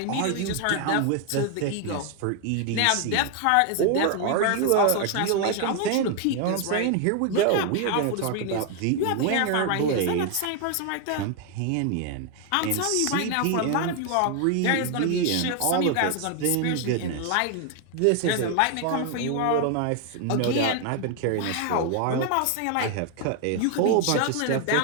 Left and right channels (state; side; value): different; both; correlation 0.00